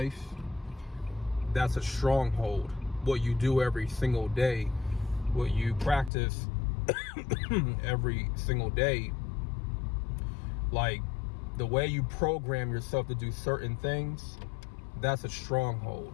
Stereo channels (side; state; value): right; drops out; at 6.1 s